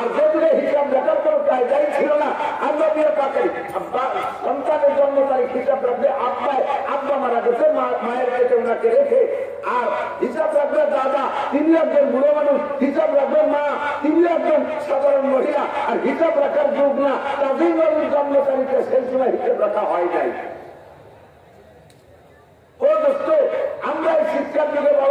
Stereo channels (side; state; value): both; identical; correlation 1.00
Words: যেদিনে হিসাব লেখার কোনো কায়দাই ছিল না, আল্লাহ দিয়ে পাকে সন্তানের জন্ম তারিখ হিসাব রাখবে আব্বা মারা গেছে, মায়ের পেটে ওনাকে রেখে, আর হিসাব রাখবে দাদা, তিনি একজন বুড়ো মানুষ, হিসাব রাখবে মা, তিনি একজন সাধারণ মহিলা, আর হিসাব রাখার যুগ না, তাদের নবীর জন্ম তারিখে সেই সময় হিসাব রাখা হয় নাই। ও দোস্ত, আমরা এই শিক্ষার যুগে